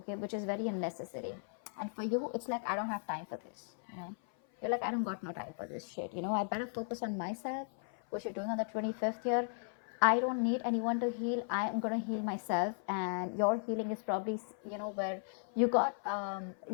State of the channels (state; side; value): silent; right; 54 dB below the other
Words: which is very unnecessary. And for you, it's like, I don't have time for this. You know, you're like, I don't got no time for this shit. You know, I better focus on myself, which you're doing on the 25th here. I don't need anyone to heal. I am going to heal myself. And your healing is probably, you know, where you got,